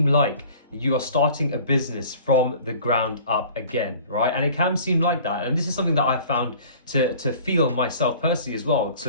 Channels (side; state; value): both; inverted; correlation -0.47